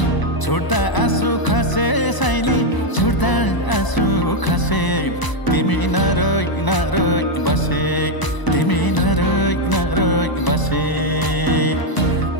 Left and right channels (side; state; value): right; late; 1.0 ms